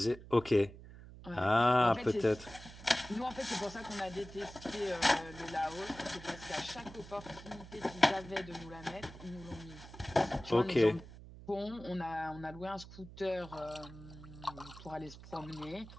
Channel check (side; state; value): right; noise; hum, 16 dB below the sound